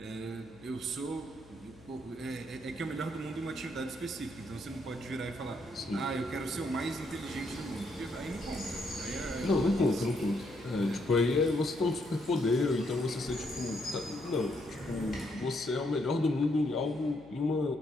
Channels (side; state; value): left; noise; hum, 22 dB below the sound